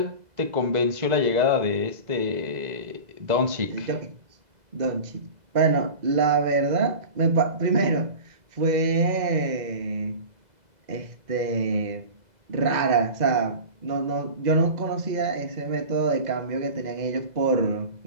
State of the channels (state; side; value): late; left; 2.0 ms